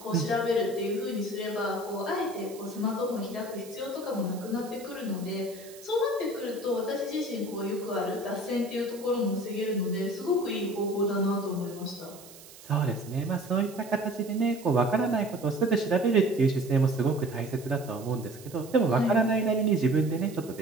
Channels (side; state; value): right; noise; hiss, 19 dB below the sound